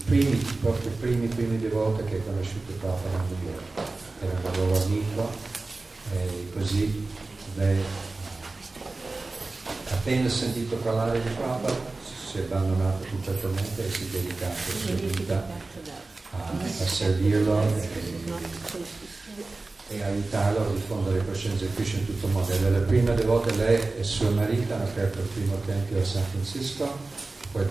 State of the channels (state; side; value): quieter; left; 3.4 dB